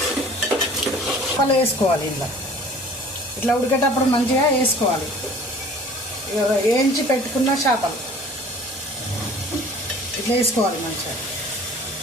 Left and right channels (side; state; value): both; normal; correlation 0.48